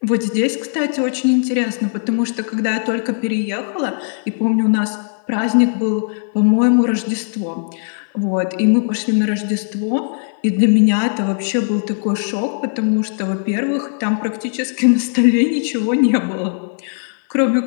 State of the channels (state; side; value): silent; right; 57 dB below the other